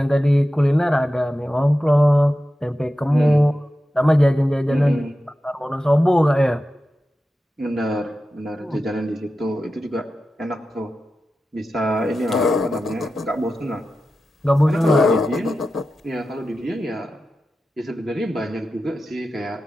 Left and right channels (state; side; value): normal; both; correlation 0.93